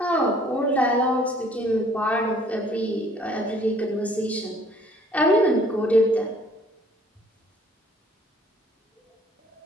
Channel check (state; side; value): normal; both; correlation 0.58